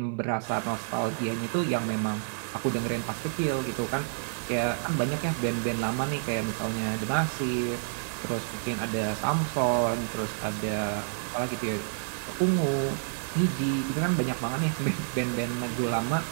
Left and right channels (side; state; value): left; silent; 59 dB below the other